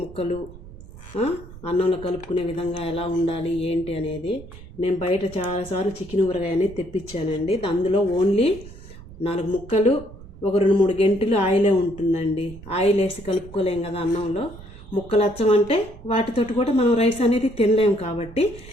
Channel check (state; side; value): noise; right; rumble, 17 dB below the sound